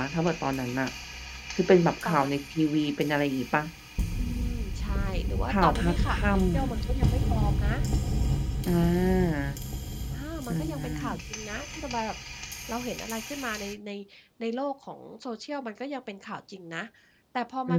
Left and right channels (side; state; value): both; identical; correlation 1.00